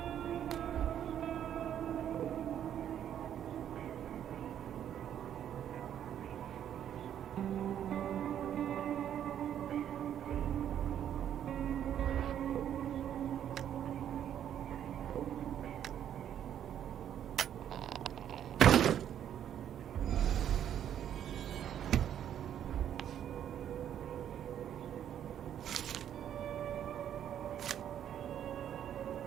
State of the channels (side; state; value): left; quieter; 9.9 dB